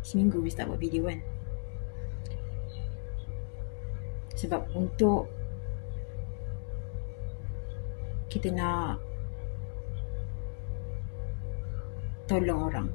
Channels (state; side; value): silent; right; 55 dB below the other